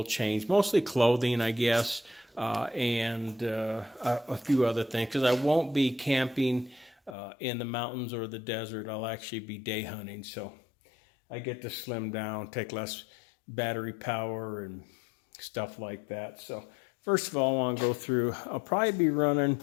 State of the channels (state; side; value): drops out; right; at 7.2 s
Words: change, mostly clothing, I guess, and a few other things, because I won't be camping in the mountains or the desert. I'll actually be day hunting, so I get to slim down, take less battery power and stuff like that. So first of all, I want to go through, I'll probably be running